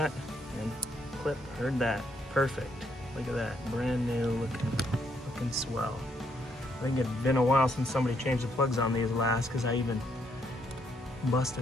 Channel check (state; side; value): normal; both; correlation 0.73